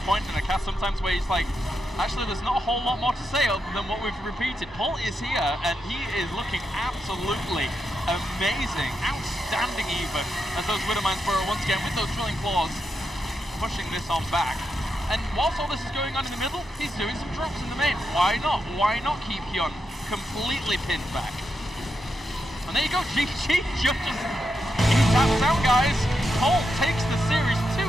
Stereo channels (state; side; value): normal; both; correlation 0.85